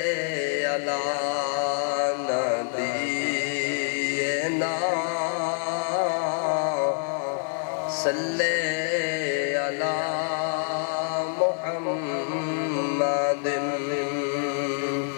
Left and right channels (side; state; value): right; silent; 61 dB below the other